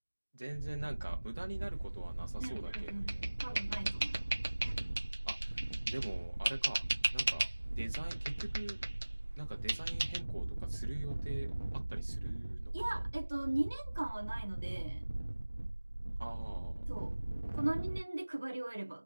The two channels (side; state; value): both; inverted; correlation -1.00